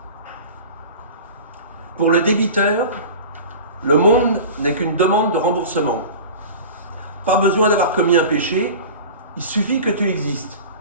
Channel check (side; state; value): both; inverted; correlation -0.36